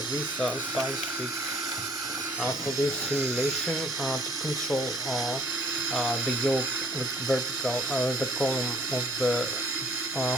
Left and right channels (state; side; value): normal; both; correlation 0.59